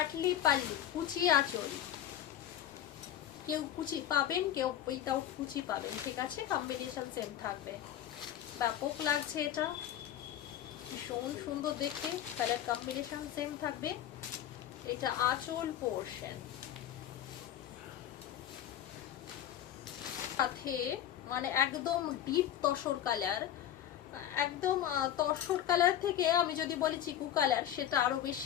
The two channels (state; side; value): quieter; right; 11.1 dB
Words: পাল্লু, কুচি আঁচল, কেউ কুচি পাবেন, কেউ উইথাউট কুচি পাবেন, ঠিক আছে, কম্বিনেশন সেম থাকবে। ব্যাপক লাগছে এটা, ভীষণ সুন্দর দেখতে, কালার কম্বিনেশন সেম থাকবে। এটা আঁচল পোর্শন, সাথে মানে একদম ডিপ তসর কালার, একদম তসর কালার থেকে আমি যদি বলি চিকু কালার, সেটা আরো